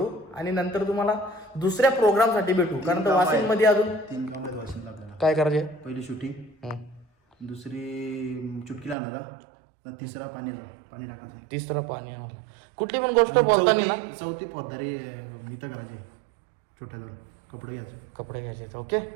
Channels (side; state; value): left; drops out; at 9.0 s